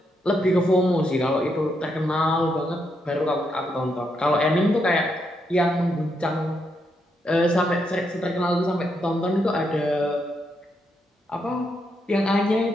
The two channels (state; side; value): normal; both; correlation 0.80